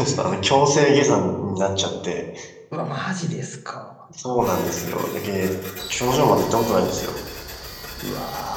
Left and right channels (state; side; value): identical; both; correlation 1.00